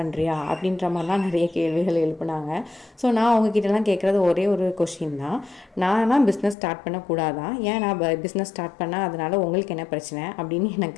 அப்படின்ற மாதிரிலாம் நிறைய கேள்விகள் எழுப்புனாங்க. ஸோ நான் அவங்கக்கிட்டலாம் கேட்குறது ஒரே ஒரு கொஷின் தான், நான்லாம் பிஸ்னஸ் ஸ்டார்ட் பண்ணக்கூடாதா, ஏன் நான் பிஸ்னஸ் ஸ்டார்ட் பண்ணால் அதனால் உங்களுக்கு என்ன பிரச்சனை அப்படின்னு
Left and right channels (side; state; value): right; drops out; at 6.6 s